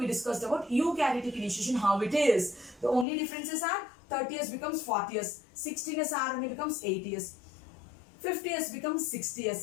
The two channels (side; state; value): right; drops out; at 3.1 s